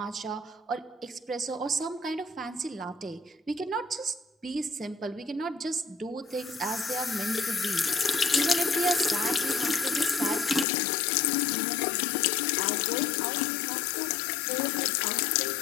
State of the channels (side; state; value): right; drops out; at 10.7 s